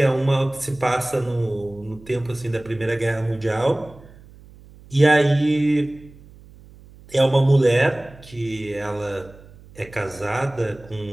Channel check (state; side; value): noise; right; hum, 22 dB below the sound